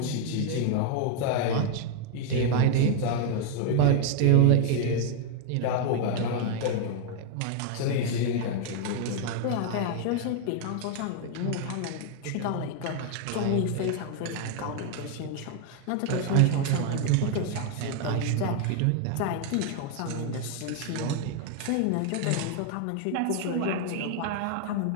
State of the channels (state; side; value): different; both; correlation 0.00